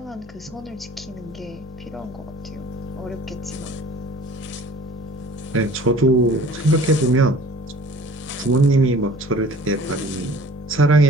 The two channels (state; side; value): normal; both; correlation 0.48